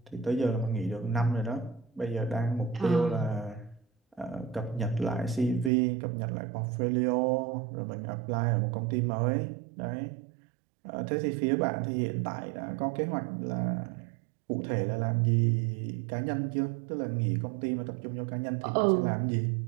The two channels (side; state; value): left; drops out; at 5.7 s